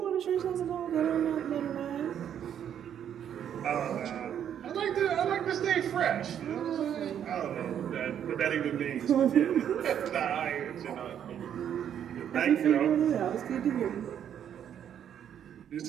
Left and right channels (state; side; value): quieter; left; 9.4 dB